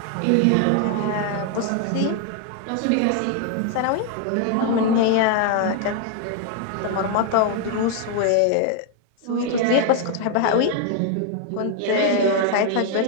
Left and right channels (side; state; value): both; different; correlation 0.00